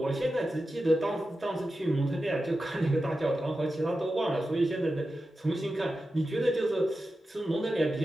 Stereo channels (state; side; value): normal; both; correlation 0.92